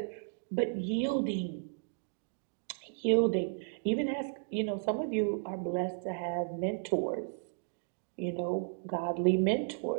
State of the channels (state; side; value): silent; left; digital silence